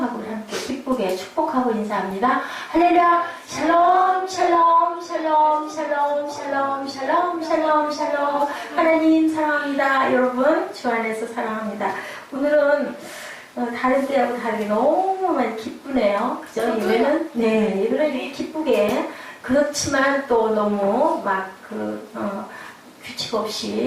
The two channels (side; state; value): both; identical; correlation 1.00